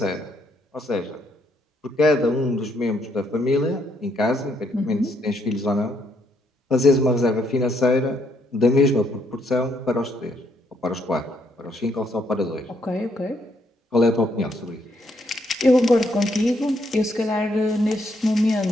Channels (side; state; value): both; normal; correlation 0.72